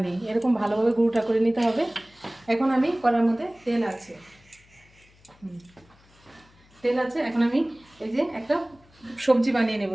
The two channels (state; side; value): noise; left; hum, 29 dB below the sound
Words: নেই, এরকম ভালোভাবে গুঁড়োটা করে নিতে হবে। এখন আমি কড়ার মধ্যে তেল আছে, এখন আমি এই যে একটা সবজি বানিয়ে নেব,